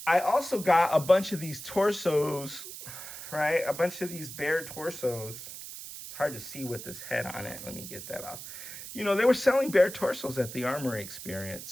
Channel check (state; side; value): noise; right; hiss, 11 dB below the sound